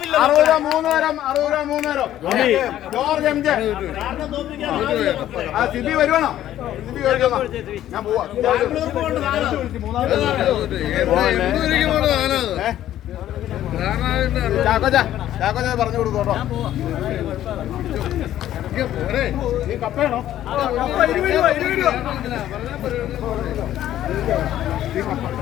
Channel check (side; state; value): right; quieter; 12.4 dB